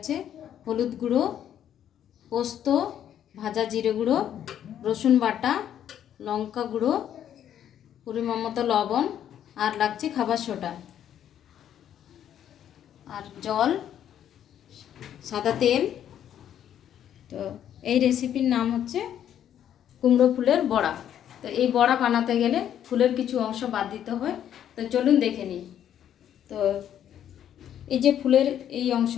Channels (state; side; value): quieter; right; 10.2 dB